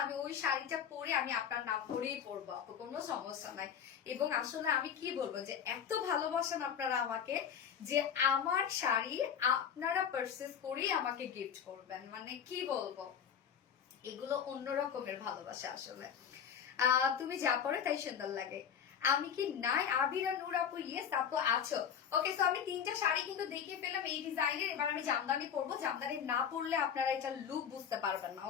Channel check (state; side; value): quieter; right; 8.0 dB